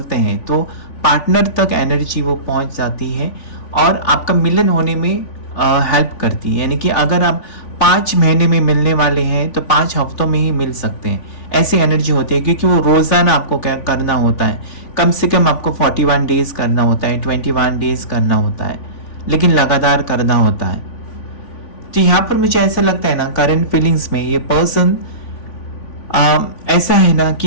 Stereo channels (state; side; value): late; right; 3.5 ms